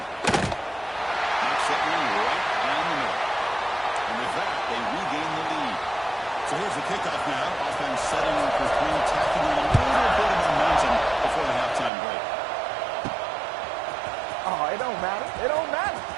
Knocks that one right down the middle. And with that, they regain the lead. So here's the kickoff now. Offense setting up for 3, tacking on a little bit of momentum before the halftime break. Oh, it don't matter. It don't matter.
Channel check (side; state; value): left; drops out; at 11.9 s